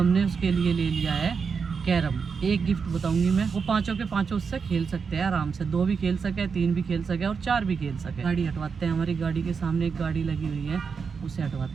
उसके लिए ले लिया है कैरम। एक गिफ्ट बताऊंगी मैं, वो पांचों के पांचों उससे खेल सकते हैं आराम से। 2 भी खेल सके, 3 भी खेल सके और 4 भी खेल सके। गाड़ी हटवाते हैं, हमारी गाड़ी के सामने एक गाड़ी लगी हुई है, उसे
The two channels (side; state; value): left; quieter; 5.7 dB